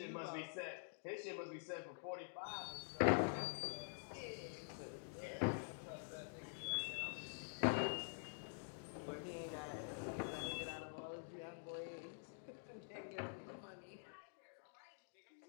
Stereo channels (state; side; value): silent; right; digital silence